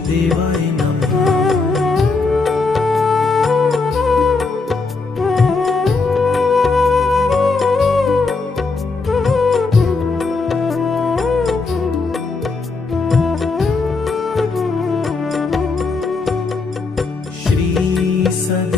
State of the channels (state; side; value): quieter; right; 4.0 dB